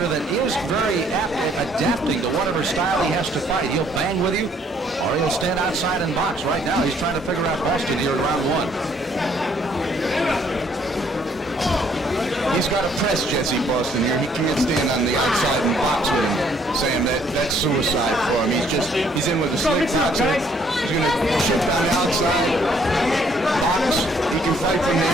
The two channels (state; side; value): normal; both; correlation 0.65